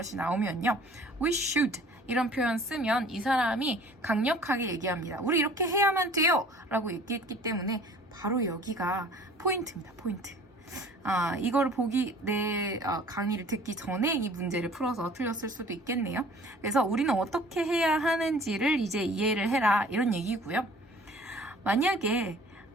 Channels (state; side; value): normal; both; correlation 0.49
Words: 나오면요. We should 이런 표현 쓰면 이 사람이 강력하게 얘기합니다. 우리 이렇게 해야만 돼요! 라고 얘기했기 때문에 바로 여기가 포인트입니다. 포인트. 이걸 내 강의를 듣기 전에 이 문제를 풀어서 틀렸을 수도 있겠네요. 그래서 우리는 어떻게 해야 하는지를 이제 이해를 해라 이런 얘기고요. 만약에